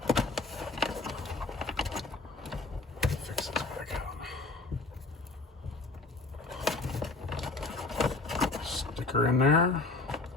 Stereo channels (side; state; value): right; quieter; 3.4 dB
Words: Fix this back out. Sticker in there.